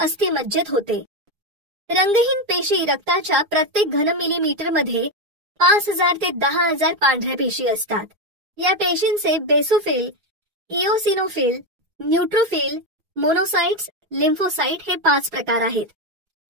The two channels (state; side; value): late; left; 4.9 ms